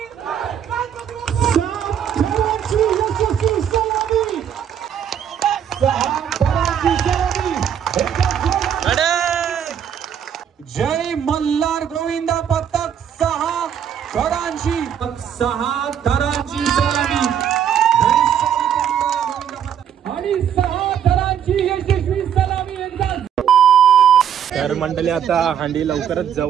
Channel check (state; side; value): quieter; left; 8.8 dB